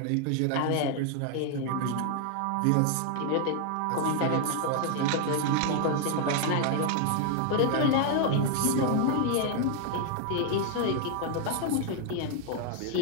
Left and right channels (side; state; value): both; different; correlation 0.00